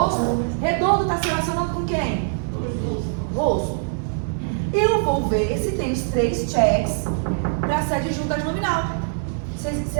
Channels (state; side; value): silent; left; digital silence